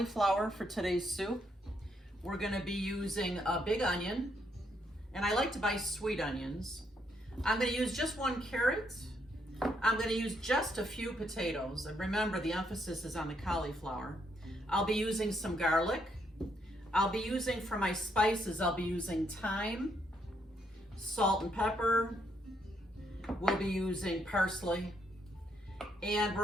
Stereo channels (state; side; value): normal; both; correlation 0.75